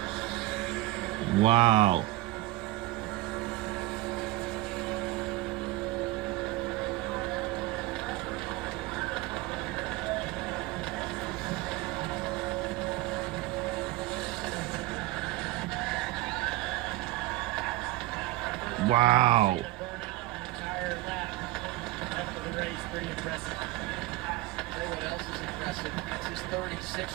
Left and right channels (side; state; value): left; quieter; 17.7 dB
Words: Wow. Wow. Entire lap after the race, pretty impressive. Tell you what else is impressive. That's his